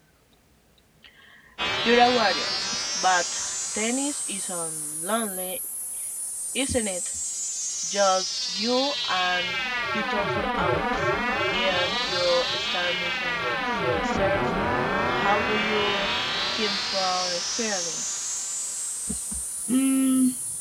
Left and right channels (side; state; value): both; identical; correlation 1.00